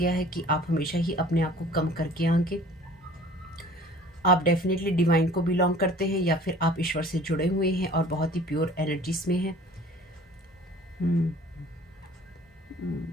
है कि आप हमेशा ही अपने आप को कम करके आएंगे। आप डेफिनेटली डिवाइन को बिलोंग करते हैं या फिर आप ईश्वर से जुड़े हुए हैं और बहुत ही प्योर एनर्जीज में हैं।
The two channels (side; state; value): both; normal; correlation 0.48